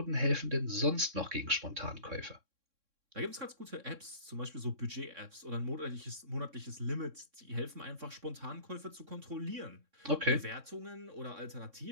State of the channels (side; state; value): left; late; 3.6 ms